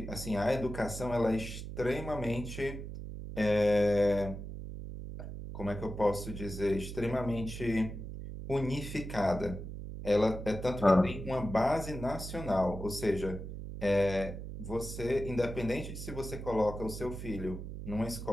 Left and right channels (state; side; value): noise; right; hum, 8 dB below the sound